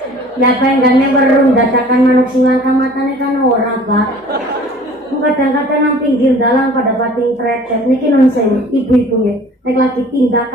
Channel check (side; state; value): both; normal; correlation 0.48